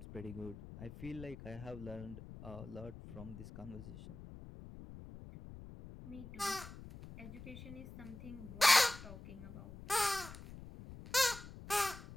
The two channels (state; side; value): noise; left; rumble, 13 dB below the sound